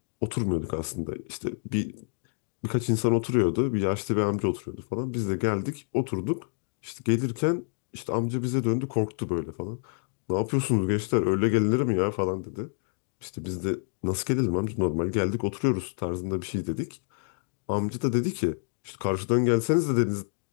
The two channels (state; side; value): silent; right; digital silence